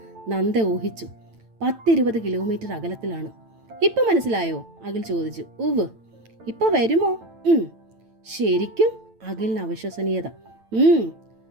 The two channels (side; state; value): left; late; 9.0 ms